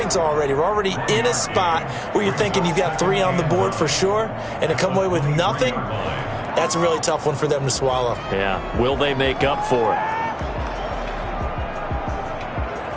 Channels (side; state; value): both; identical; correlation 1.00